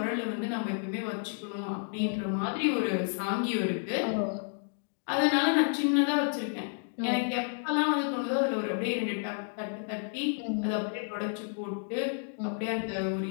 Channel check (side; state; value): right; silent; 57 dB below the other